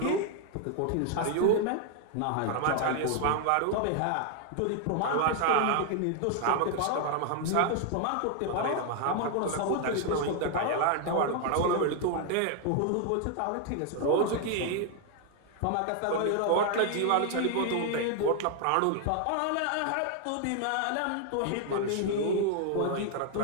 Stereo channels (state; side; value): different; both; correlation 0.00